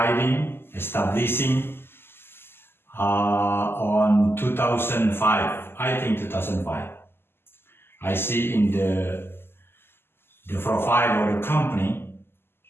establishing on 2005, I think 2005. I see in the profile of the company,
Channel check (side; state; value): right; late; 0.11 ms